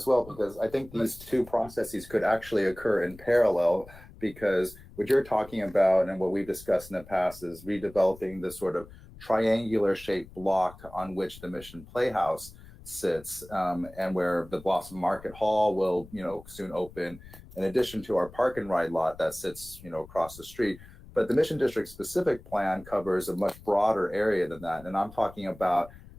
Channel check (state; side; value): noise; left; rumble, 19 dB below the sound